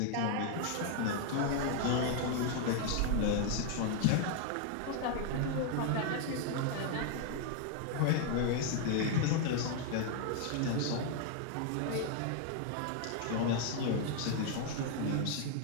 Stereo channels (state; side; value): different; both; correlation 0.00